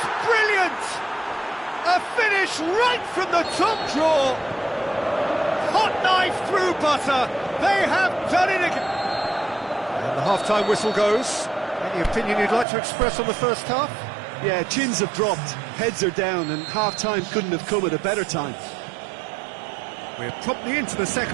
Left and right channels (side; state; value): left; drops out; at 12.7 s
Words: brilliant! A finish right from the top drawer. Hot knife through butter. They have done it again. And the half-time whistle goes. Any opinion you'd like to express on the first half? Yeah, chins have dropped, heads are down, and half-time couldn't have come at a better time. We're promptly into the